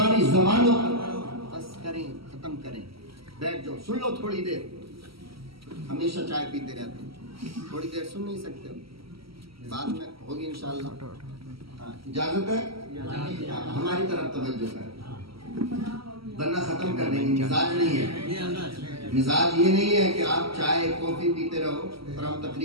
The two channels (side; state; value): left; late; 0.75 ms